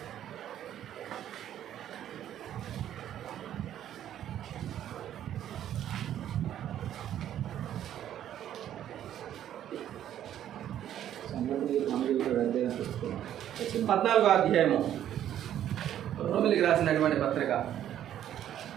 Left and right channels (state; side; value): quieter; left; 11.0 dB